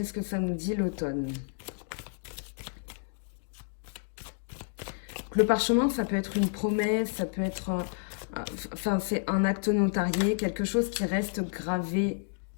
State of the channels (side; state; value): right; silent; digital silence